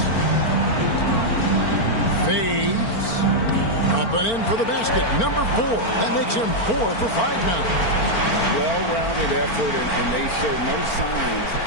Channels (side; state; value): right; late; 4.4 ms